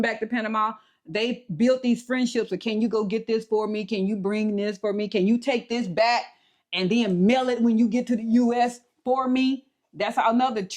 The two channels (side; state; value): both; identical; correlation 1.00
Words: back to Panama, they built these friendships. So can you go get this for me? Can you bring this for me? Can you take this back and then mail it when you get to the U.S. for me? That's another